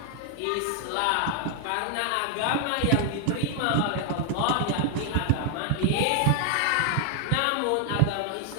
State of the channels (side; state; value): both; different; correlation 0.00